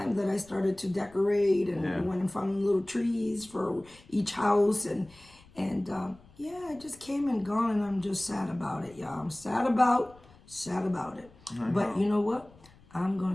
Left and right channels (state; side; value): noise; left; rumble, 25 dB below the sound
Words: that I started to decorate and went and found little trees for each house and it just came and gone, and I'm just sad about it, y'all. I'm sad about it. But you know what? I'm